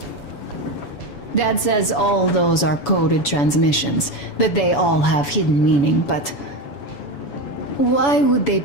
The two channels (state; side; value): late; right; 7.0 ms